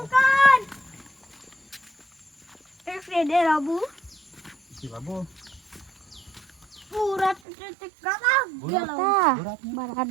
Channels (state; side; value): drops out; left; at 7.4 s